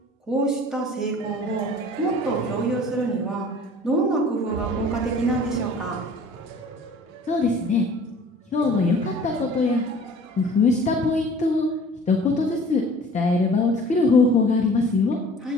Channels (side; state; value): both; normal; correlation 0.48